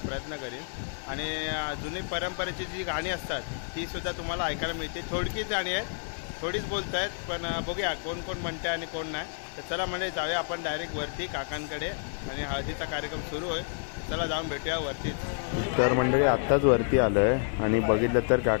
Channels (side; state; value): right; silent; digital silence